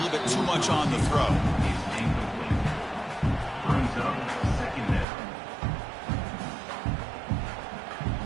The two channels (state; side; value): drops out; left; at 5.1 s